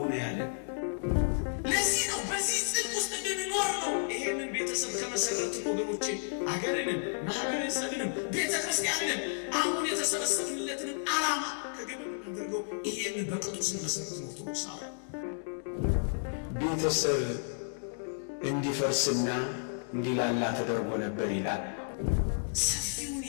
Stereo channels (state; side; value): silent; right; digital silence